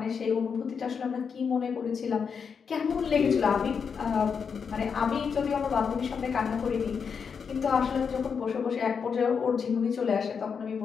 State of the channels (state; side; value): quieter; right; 6.2 dB